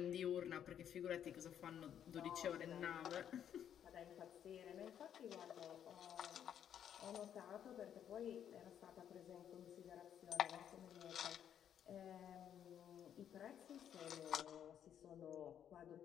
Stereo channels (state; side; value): quieter; right; 9.4 dB